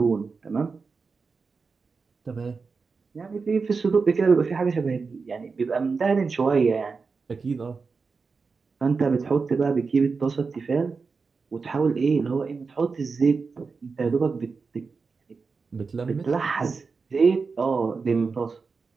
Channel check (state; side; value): quieter; left; 4.7 dB